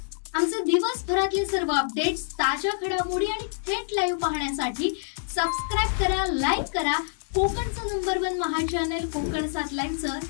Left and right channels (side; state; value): right; silent; digital silence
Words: आमचे दिवसभरातले सर्व अपडेट्स, ताज्या घडामोडी आणि थेट लाईव्ह पाहण्यासाठी सबस्क्राइब करा, लाईक करा कोकणचं नंबर 1 महा चॅनल कोकण 7 लाईव्हचं